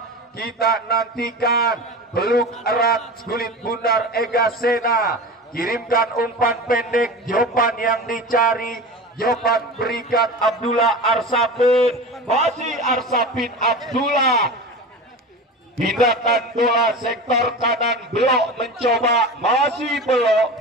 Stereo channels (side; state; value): both; normal; correlation 0.30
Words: Kita nantikan peluk erat kulit bundar Ega Sena, kirimkan umpan pendek, jawaban yang dicari, jawaban berikan Abdullah Arsapin, masih Arsapin Abdullah, pindahkan bola sektor kanan, Belo mencoba, masih